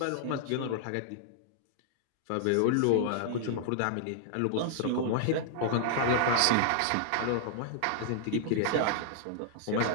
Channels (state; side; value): different; both; correlation -0.01